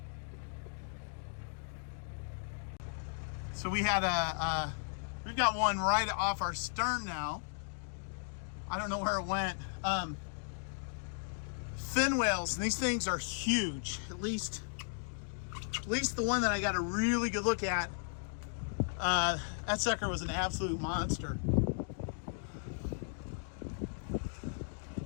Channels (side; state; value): right; silent; digital silence